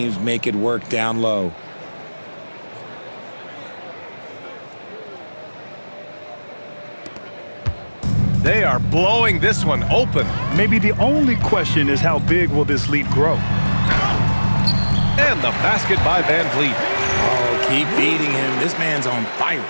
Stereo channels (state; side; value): inverted; both; correlation -1.00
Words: make it work down low. They are blowing this one open. Maybe the only question is how big will this lead grow? And the basket by Van Vliet. Oh, keep feeding him. This man's on fire.